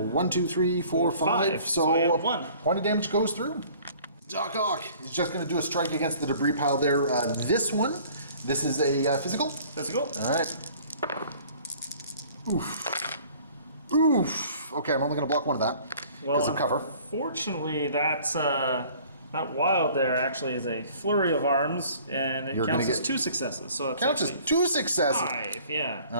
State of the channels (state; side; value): inverted; both; correlation -0.52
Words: 2, 3, 4, 5. So I have 1 point of damage goes through. Doc Ock is just going to do a strike against the debris pile there. This is a physical. Physical. All right. Oof. Oof. Okay, I'm only going to block 1 of that because of cover. Fortunately, that wild there actually is a flurry of arms, and it counts as 2 successes. So it's counts as 2 successes. 5, yeah.